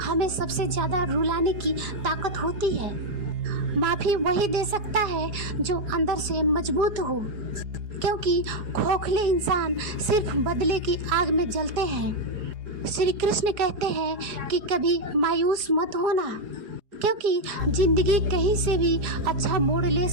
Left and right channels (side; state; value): left; late; 4.9 ms